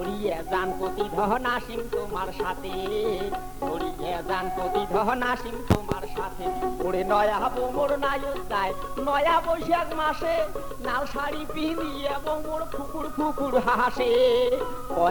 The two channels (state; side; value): identical; both; correlation 1.00